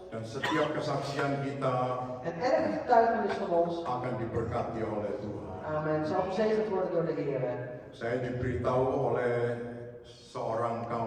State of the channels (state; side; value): identical; both; correlation 1.00